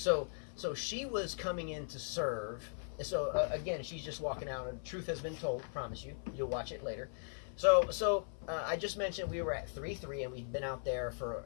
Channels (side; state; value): right; silent; 52 dB below the other